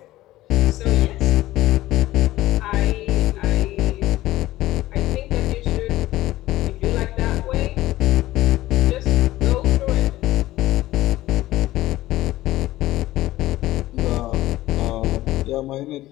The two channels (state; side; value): quieter; right; 16.1 dB